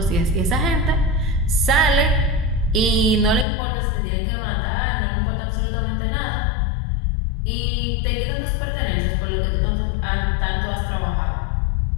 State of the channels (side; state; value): right; drops out; at 3.5 s